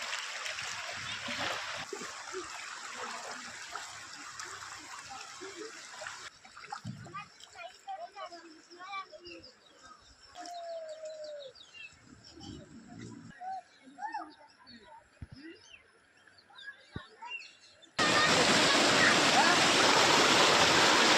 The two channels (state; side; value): identical; both; correlation 1.00